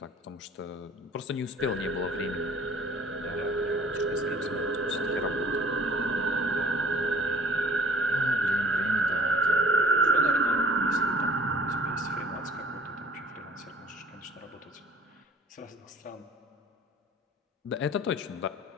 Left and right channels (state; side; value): normal; both; correlation 0.52